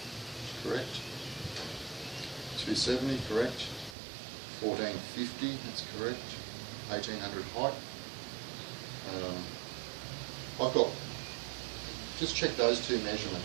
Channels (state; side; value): drops out; left; at 4.0 s